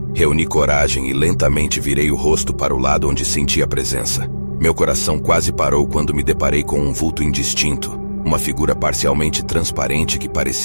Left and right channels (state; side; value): inverted; both; correlation -1.00